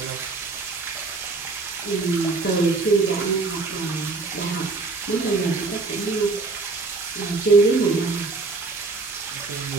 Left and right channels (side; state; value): left; quieter; 3.8 dB